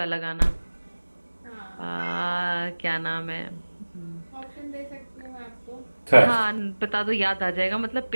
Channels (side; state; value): both; inverted; correlation -1.00